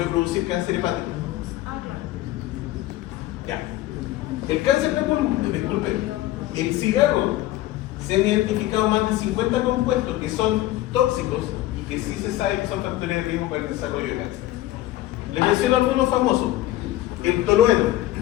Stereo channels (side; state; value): right; quieter; 15.4 dB